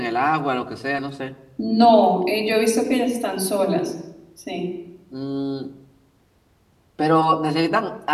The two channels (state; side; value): identical; both; correlation 1.00